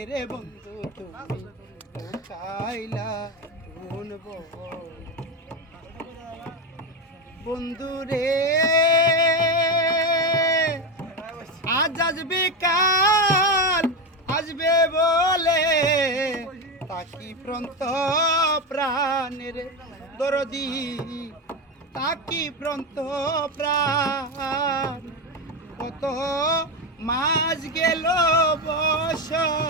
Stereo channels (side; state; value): both; normal; correlation 0.14